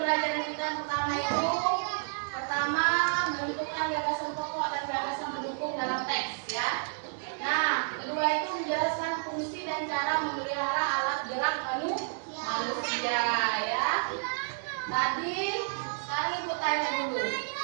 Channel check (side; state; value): left; silent; digital silence